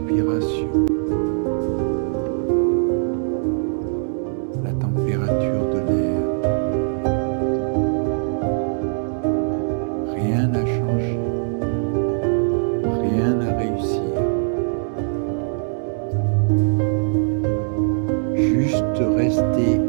la température de l'air. Rien n'a changé, rien n'a réussi. Juste rester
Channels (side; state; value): left; silent; digital silence